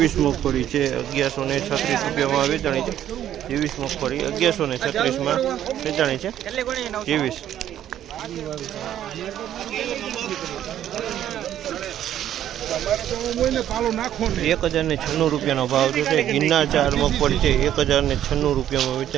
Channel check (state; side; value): quieter; left; 11.2 dB